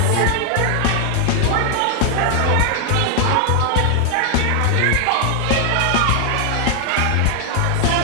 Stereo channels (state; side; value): different; both; correlation 0.00